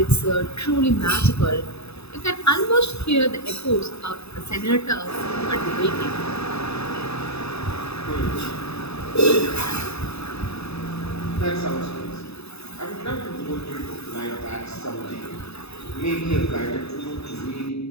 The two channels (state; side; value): late; right; 0.79 ms